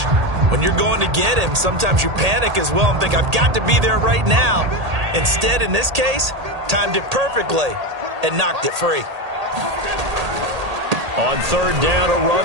When you're going to get him, sometimes you panic as well and think, I've got to be there right now. Instead, in this case, timed it perfectly and knocked it free. On 3rd down, a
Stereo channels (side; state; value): left; late; 1.8 ms